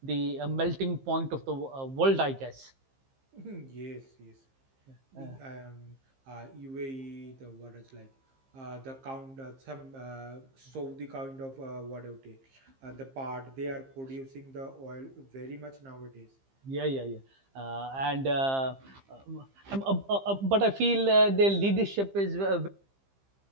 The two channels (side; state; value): left; late; 15 ms